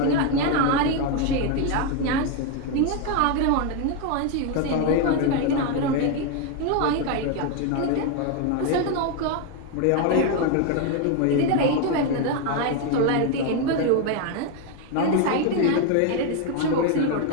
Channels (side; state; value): both; different; correlation 0.01